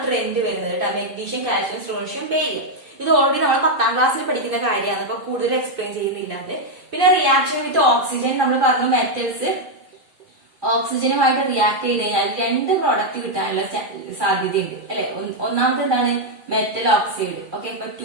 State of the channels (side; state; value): left; late; 2.4 ms